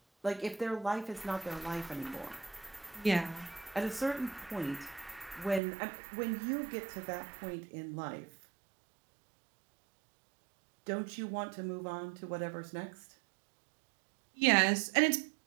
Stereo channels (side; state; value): left; drops out; at 5.6 s